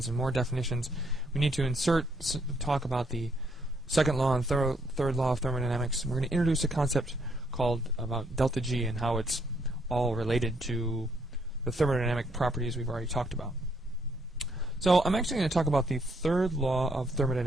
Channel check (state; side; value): normal; both; correlation 0.72